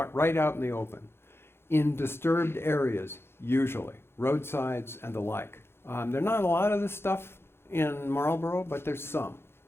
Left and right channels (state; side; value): late; right; 0.12 ms